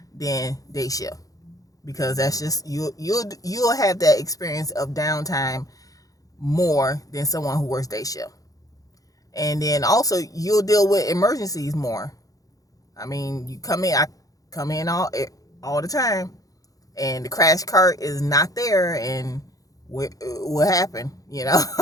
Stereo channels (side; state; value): right; late; 0.17 ms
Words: than day shift, because that's just you'll have that experience of downtime more than someone who works day shift. And then also you'll deal with emergencies more. I mean, I come in all the time, and the crash cart is not there, and what happened?